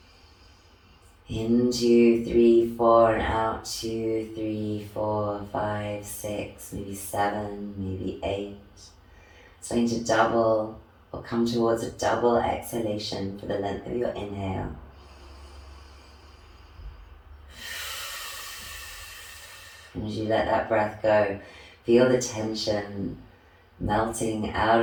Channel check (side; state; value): both; identical; correlation 1.00